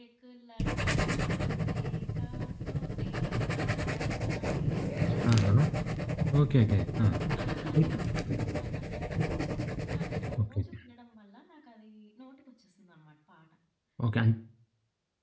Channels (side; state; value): both; identical; correlation 1.00